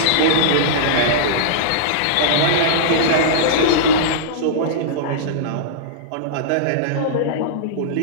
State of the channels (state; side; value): different; both; correlation -0.03